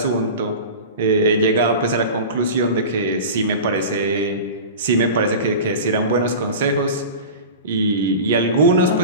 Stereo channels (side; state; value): both; inverted; correlation -0.32